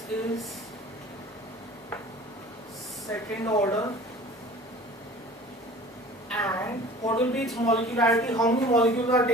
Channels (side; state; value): both; normal; correlation 0.44